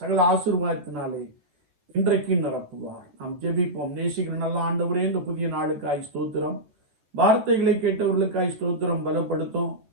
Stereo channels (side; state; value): left; late; 14 ms